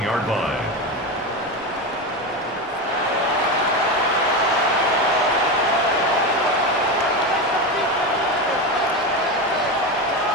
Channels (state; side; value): normal; both; correlation 0.18